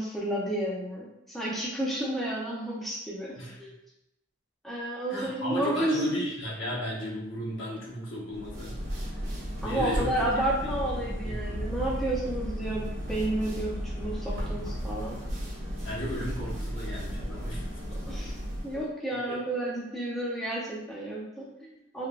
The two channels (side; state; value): both; normal; correlation 0.56